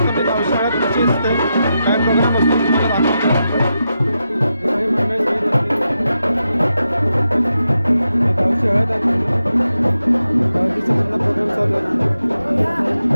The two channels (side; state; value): both; inverted; correlation -0.87